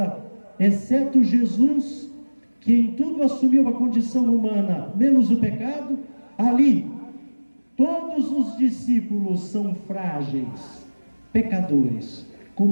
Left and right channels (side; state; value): both; inverted; correlation -1.00